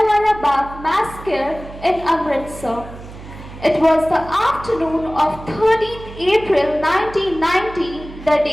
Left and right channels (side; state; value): right; noise; hum, 15 dB below the sound